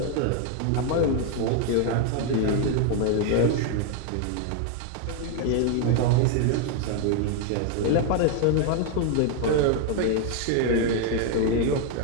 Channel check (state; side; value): different; both; correlation 0.01